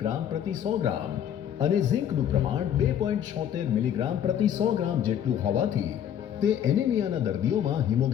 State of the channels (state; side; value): quieter; right; 9.8 dB